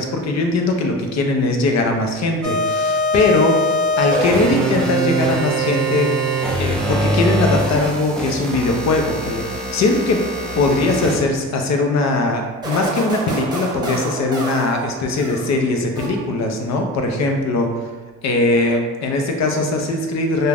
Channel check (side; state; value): both; normal; correlation 0.32